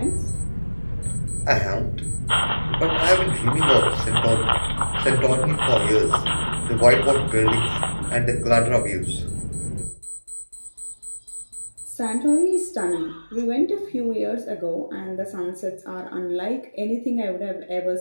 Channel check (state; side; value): inverted; both; correlation -1.00